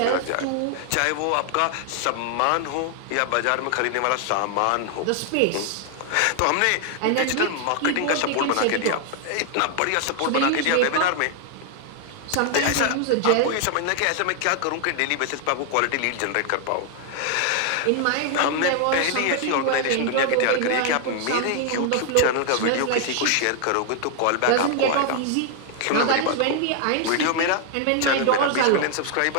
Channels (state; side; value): different; both; correlation 0.00